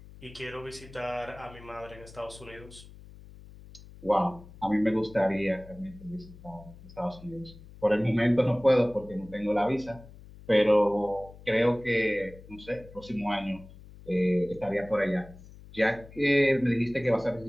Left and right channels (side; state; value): left; noise; hum, 19 dB below the sound